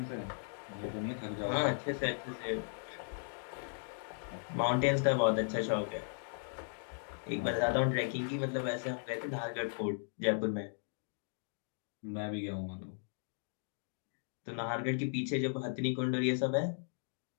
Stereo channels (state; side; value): silent; right; digital silence